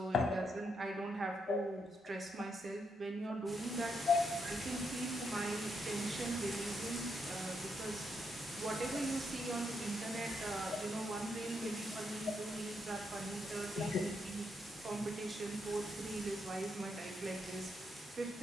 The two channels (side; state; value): both; normal; correlation 0.79